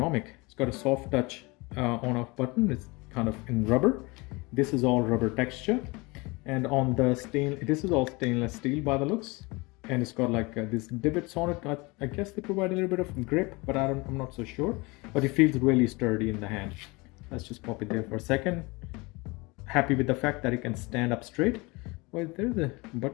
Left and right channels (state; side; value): quieter; right; 25.5 dB